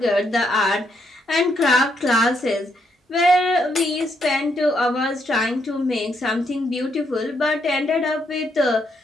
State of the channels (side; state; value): both; normal; correlation 0.76